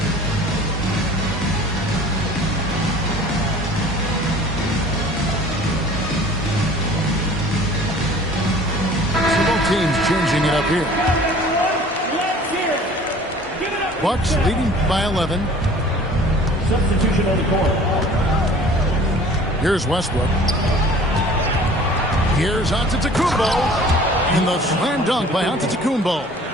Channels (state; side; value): normal; both; correlation 0.48